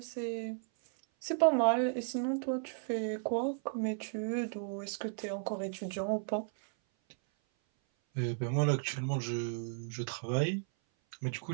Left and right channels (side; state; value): left; silent; 55 dB below the other